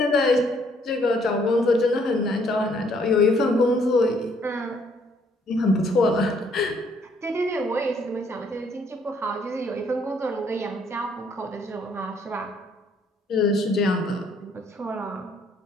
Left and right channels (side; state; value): both; normal; correlation 0.66